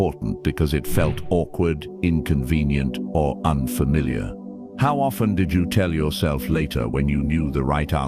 because it felt awkward, inconvenient, or unfamiliar? How often did you tell yourself later when you knew the right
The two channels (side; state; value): both; identical; correlation 1.00